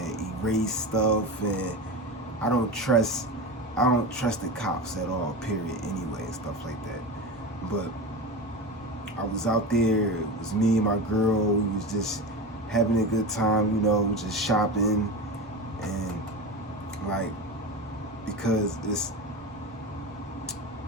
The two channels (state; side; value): normal; both; correlation 0.25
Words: erase stuff, and I don't trust the cops at all, period, anyway, and stuff like that. But I was out there, it was me and my girl, we was just having a good time, you know, just shopping, and like, because